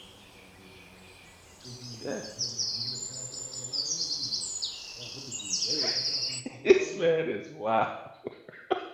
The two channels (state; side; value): identical; both; correlation 1.00